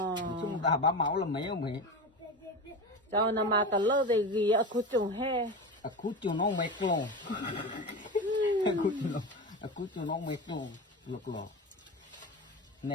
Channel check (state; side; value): normal; both; correlation 0.25